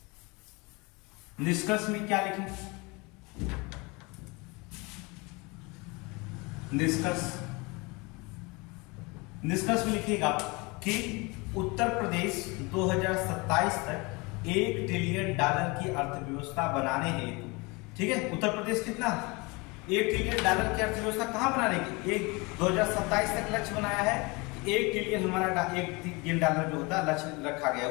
निष्कर्ष में क्या लिखेंगे, निष्कर्ष में लिखिएगा कि उत्तर प्रदेश 2027 तक $1 ट्रिलियन की अर्थव्यवस्था बनाने हेतु, ठीक है, उत्तर प्रदेश कितना $1 ट्रिलियन की अर्थव्यवस्था कहां बनाने की, 2027 तक लक्ष्य बनाया है, $1 ट्रिलियन हमारा $1 ट्रिलियन जो होता है लक्ष्य रखा गया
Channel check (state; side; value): quieter; right; 26.7 dB